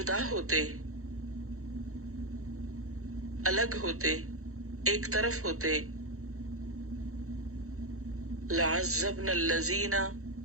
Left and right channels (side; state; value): left; late; 0.63 ms